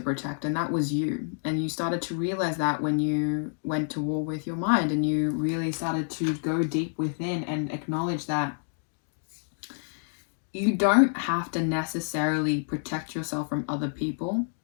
and that was you. And you started to realize that when you went to war with your mind, and you really started to go deep within and acknowledge that you don't have to necessarily protect yourself from other people.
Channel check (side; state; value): right; silent; digital silence